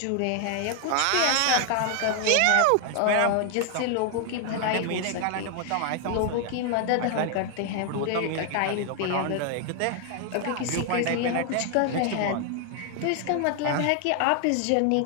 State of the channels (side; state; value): both; different; correlation 0.00